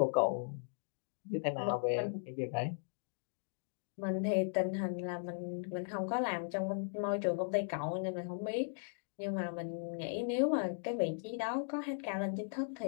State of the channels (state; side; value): silent; right; digital silence